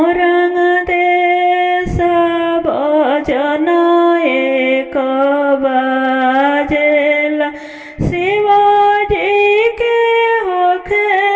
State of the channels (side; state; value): both; identical; correlation 1.00